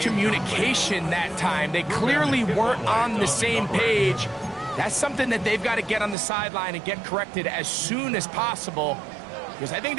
that time. They clearly weren't on the same page. That's something that they've got to get on the sideline and get corrected as soon as possible, because I think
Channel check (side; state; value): left; drops out; at 6.2 s